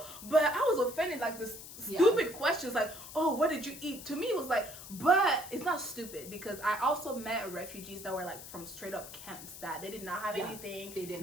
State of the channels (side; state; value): left; noise; hiss, 13 dB below the sound